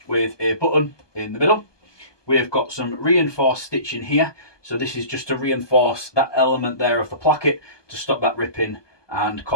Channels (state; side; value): late; right; 1.2 ms